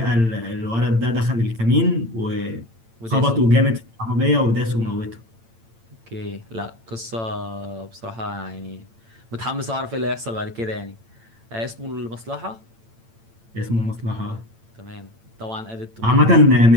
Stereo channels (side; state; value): left; late; 8.9 ms